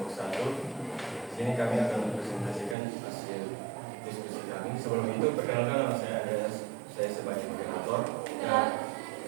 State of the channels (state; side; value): drops out; left; at 2.8 s